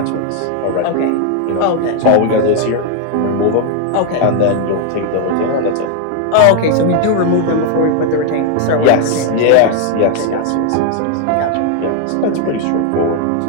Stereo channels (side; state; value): both; different; correlation 0.00